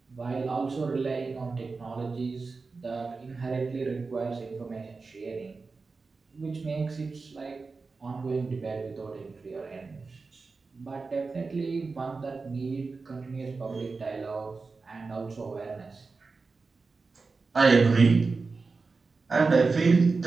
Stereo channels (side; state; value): left; quieter; 4.2 dB